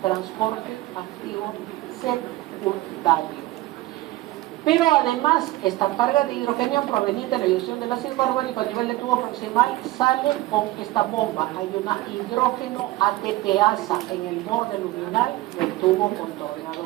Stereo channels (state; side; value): quieter; left; 17.7 dB